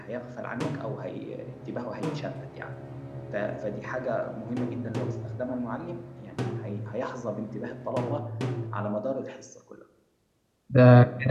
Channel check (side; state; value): both; identical; correlation 1.00